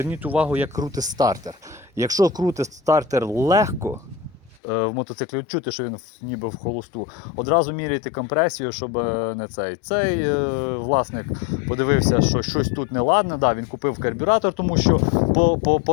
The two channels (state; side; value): drops out; right; at 4.6 s